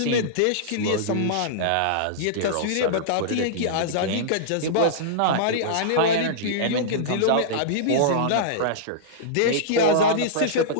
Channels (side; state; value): both; different; correlation -0.03